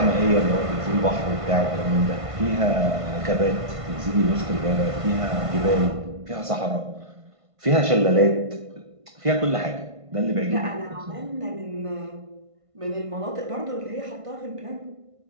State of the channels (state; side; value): late; left; 1.5 ms